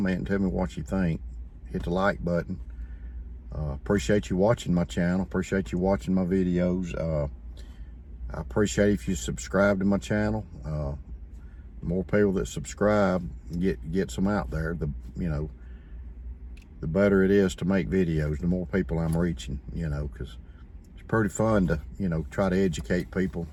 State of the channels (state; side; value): identical; both; correlation 1.00